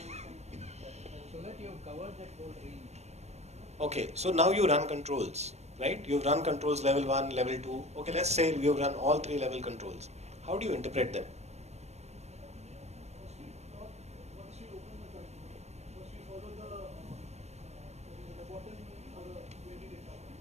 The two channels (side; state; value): left; late; 0.32 ms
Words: that you have covered that whole range. Okay, so now you run controls, right? You've run controls level 1, level 2. Okay, let's say you've run all 3 level controls. How do you interpret them? Once we open the control, first we follow the bottom for the weighted data.